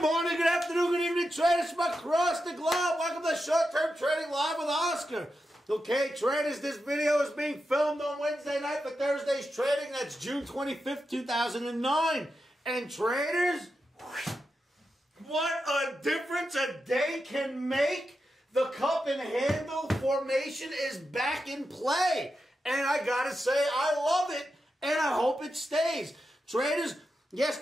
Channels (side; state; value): both; normal; correlation 0.88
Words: morning, good afternoon, good evening, traders from across the globe. Welcome to Short-Term Trading Live with Oscar. Okay, traders, this video is being filmed on Wednesday night for Thursday's trading. That's June 25th, 2009. And traders, what a difference a day can make. The cup and handle formation is back in play. And I gotta say, I love it, and I hope it stays. Traders,